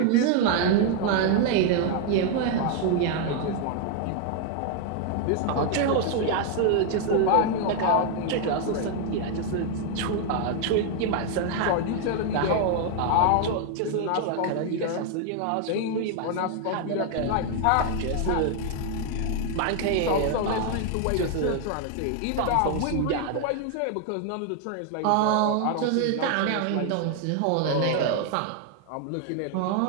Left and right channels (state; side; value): different; both; correlation 0.00